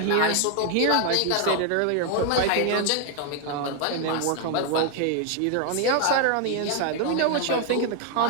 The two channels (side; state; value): both; different; correlation 0.01